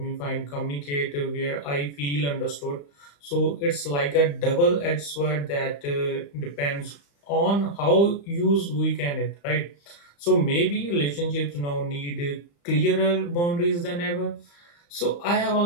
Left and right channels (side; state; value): right; late; 35 ms